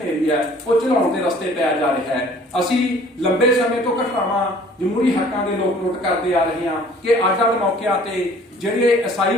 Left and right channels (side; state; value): both; normal; correlation 0.53